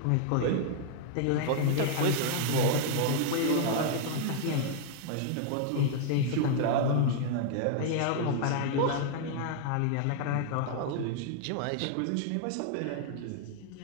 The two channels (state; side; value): different; both; correlation -0.01